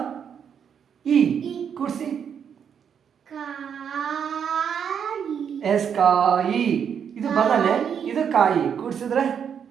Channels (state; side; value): quieter; left; 7.7 dB